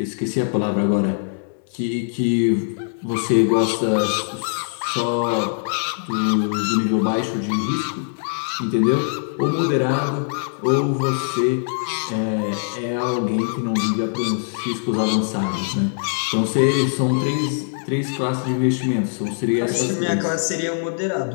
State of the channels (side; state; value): right; silent; digital silence